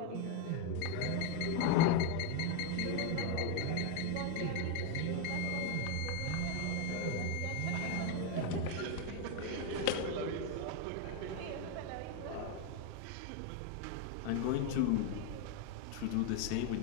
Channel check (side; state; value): both; different; correlation 0.01